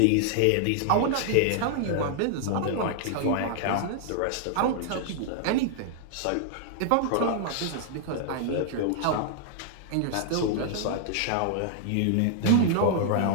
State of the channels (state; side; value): different; both; correlation -0.01